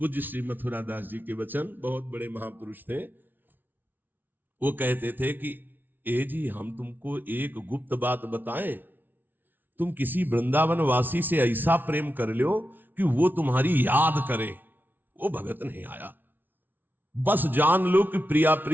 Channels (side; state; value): left; late; 0.090 ms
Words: श्री मथुरा दास जी के वचन, बहुत बड़े महापुरुष थे। वो कहते थे कि ए जी, हम तुमको एक गुप्त बात बताएं, तुम किसी वृंदावन वासी से ऐसा प्रेम कर लो कि वो तुम्हारी याद करे। वो भगत नहीं आया, बस जान लो कि प्रिया